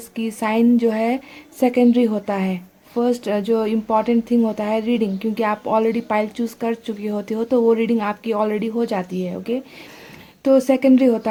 कि साइन जो है सेकेंडरी होता है। फर्स्ट जो इम्पॉर्टेंट थिंग होता है रीडिंग, क्योंकि आप ऑलरेडी पाइल चूज़ कर चुकी होती हो, तो वो रीडिंग आपकी ऑलरेडी हो जाती है। ओके, तो सेकेंडरी होता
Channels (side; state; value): both; identical; correlation 1.00